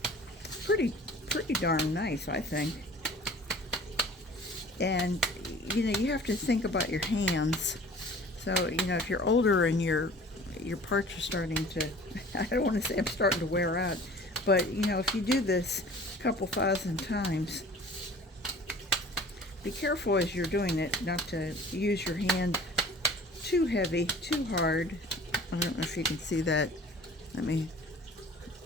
pretty darn nice, I think. And you have to think about your hands. So if you're older and your parts are starting to, I don't want to say I'm starting to wear out, but if you do this a couple thousand times, be careful as you're doing it not to use your hand too heavy, too hard. I don't know if you can see that. Let me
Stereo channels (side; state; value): both; normal; correlation 0.46